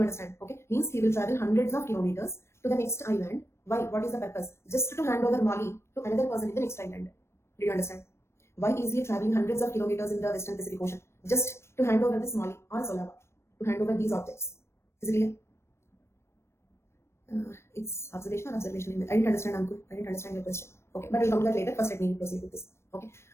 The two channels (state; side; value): late; right; 0.13 ms